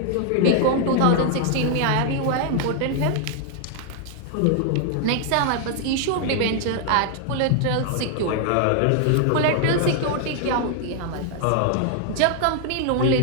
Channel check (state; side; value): different; both; correlation 0.00